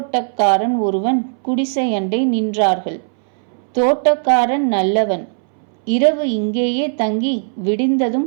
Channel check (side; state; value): left; silent; 65 dB below the other